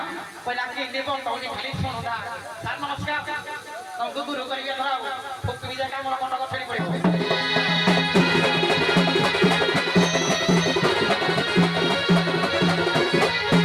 पहिला के देबो तौनी खाली सुनोदा सर नमस्कार तुमको गुरु करिए धराओ फुक भी जाका मोर कंड गठरी पड़िबो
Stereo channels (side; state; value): both; identical; correlation 1.00